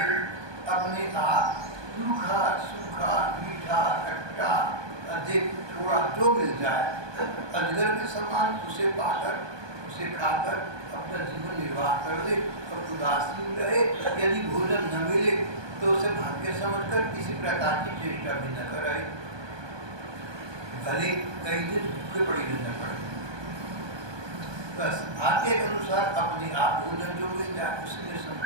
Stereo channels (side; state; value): left; late; 1.2 ms